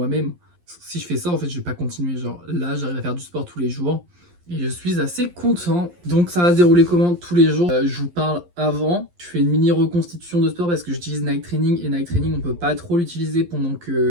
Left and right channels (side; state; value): left; late; 11 ms